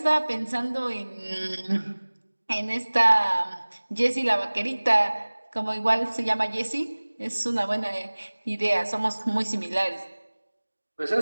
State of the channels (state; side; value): inverted; both; correlation -1.00